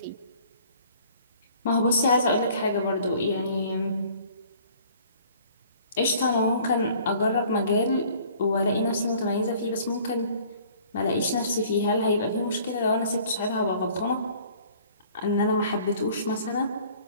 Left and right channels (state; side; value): inverted; both; correlation -0.53